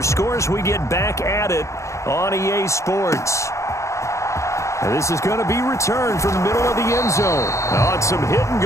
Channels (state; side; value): late; right; 0.14 ms